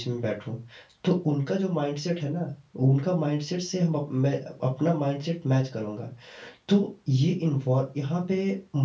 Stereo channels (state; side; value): identical; both; correlation 1.00